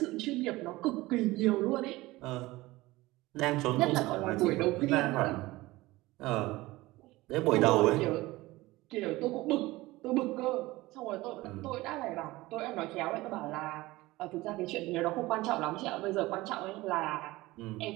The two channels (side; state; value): left; quieter; 19.4 dB